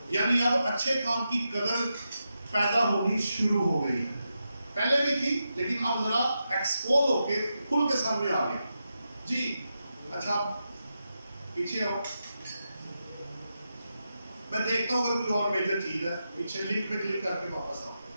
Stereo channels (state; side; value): inverted; both; correlation -0.87